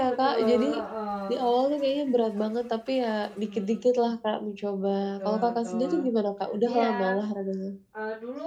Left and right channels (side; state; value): both; identical; correlation 1.00